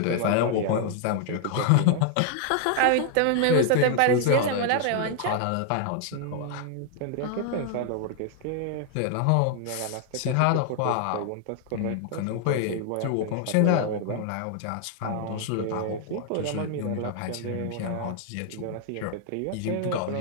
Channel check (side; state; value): both; different; correlation 0.00